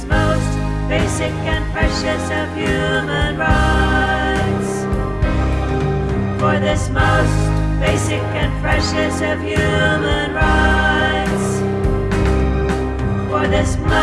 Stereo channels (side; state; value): both; identical; correlation 1.00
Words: most basic and precious of human rights. For this most basic and precious of human rights. For this